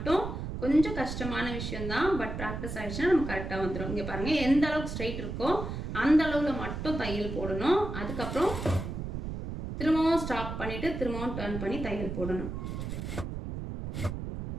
கொஞ்சம் கஷ்டமான விஷயம்தான். பட் ப்ராக்டிஸ் ஆகிடுச்சுன்னா நம்ம கரெக்டாக வந்துடும். இங்கே பாருங்கள், எந்த அளவுக்கு ஸ்ட்ரைட் இருக்கோ அந்த அளவில் மட்டும் தையல் போடணும். அதுக்கப்புறம் திரும்பவும் ஸ்டாப் பண்ணிவிட்டு திரும்பவும் டர்ன் பண்ணி தையல் போடணும்.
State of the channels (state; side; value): noise; right; rumble, 5 dB below the sound